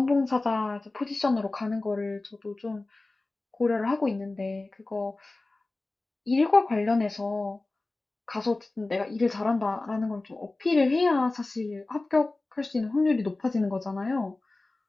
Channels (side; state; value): right; quieter; 3.1 dB